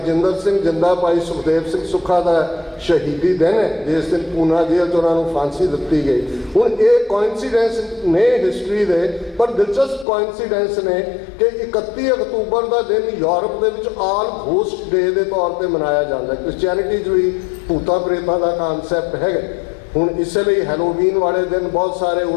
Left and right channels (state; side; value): drops out; right; at 10.1 s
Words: ਸਿੰਘ ਜਿੰਦਾ, ਭਾਈ ਸੁਖਦੇਵ ਸਿੰਘ ਸੁੱਖਾ ਦਾ ਸ਼ਹੀਦੀ ਦਿਨ ਹੈ, ਜਿਸ ਦਿਨ ਪੂਨਾ ਜੇਲ੍ਹ 'ਚ ਉਹਨਾਂ ਨੂੰ ਫਾਂਸੀ ਦਿੱਤੀ ਗਈ। ਹੁਣ ਇਹ ਕੋਇਨਸੀਡੈਂਸ ਨੇ ਹਿਸਟਰੀ ਦੇ, ਪਰ ਦਿਲਚਸਪ ਕੋਇਨਸੀਡੈਂਸ ਨੇ ਕਿ 31 ਅਕਤੂਬਰ ਦਾ ਦਿਨ ਯੂਰਪ ਦੇ ਵਿੱਚ ਆਲ ਗੋਸਟ ਡੇ ਦੇ ਤੌਰ ਤੇ ਮਨਾਇਆ ਜਾਂਦਾ ਹੈ। ਕ੍ਰਿਸਚੀਅਨਿਟੀ 'ਚ ਵੀ ਭੂਤਾਂ ਪ੍ਰੇਤਾਂ ਦਾ ਕਾਨਸੈਪਟ ਹੈਗਾ। ਹੁਣ ਇਸੇ ਲਈ ਹੈਲੋਵੀਨ ਵਾਲੇ ਦਿਨ ਬਹੁਤ ਸਾਰੇ